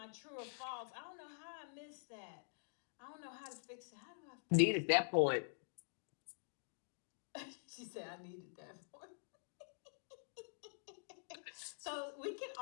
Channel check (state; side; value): silent; right; digital silence